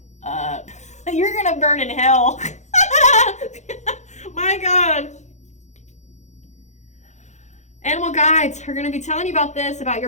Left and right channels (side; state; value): right; late; 0.34 ms